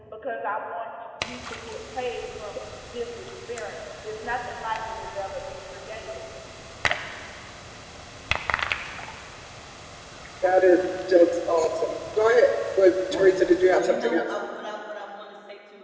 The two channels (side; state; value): both; identical; correlation 1.00